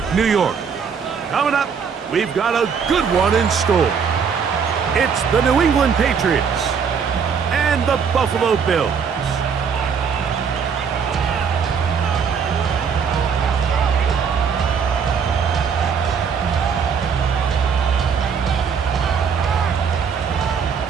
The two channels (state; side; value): quieter; left; 6.5 dB